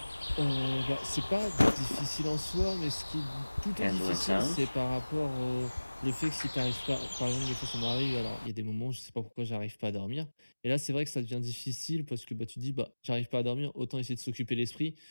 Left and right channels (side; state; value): both; inverted; correlation -1.00